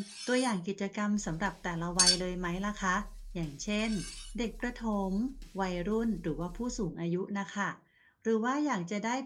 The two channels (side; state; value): both; identical; correlation 1.00